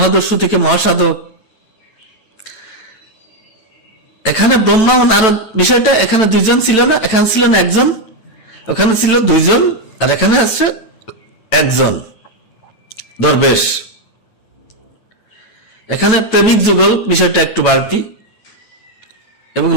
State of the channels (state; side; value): late; right; 9.1 ms